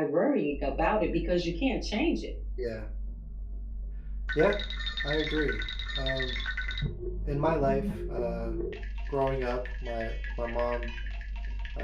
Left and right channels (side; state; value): both; identical; correlation 1.00